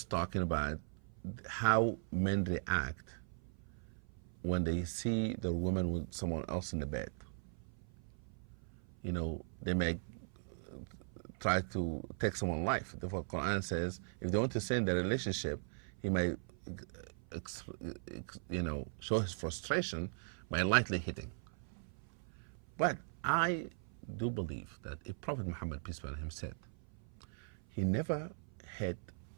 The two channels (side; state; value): left; silent; 51 dB below the other